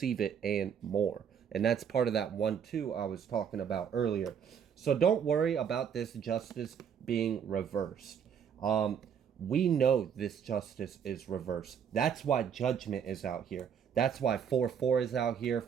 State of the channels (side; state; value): left; quieter; 7.8 dB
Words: it and more. And that's part of that 1-2 I was talking about earlier. So don't worry about this justice being reversed. We know this justice is reversed. That's why judgment is out here. That's why 4-4 is out here,